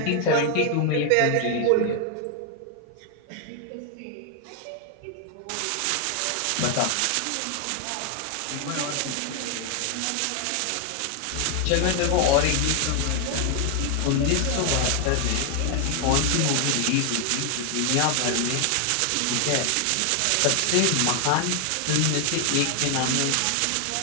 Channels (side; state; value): both; different; correlation 0.00